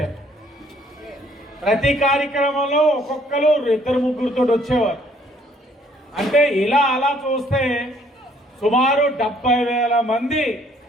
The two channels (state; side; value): normal; both; correlation 0.63